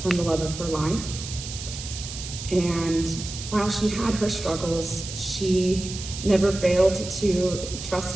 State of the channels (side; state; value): right; noise; hiss, 9 dB below the sound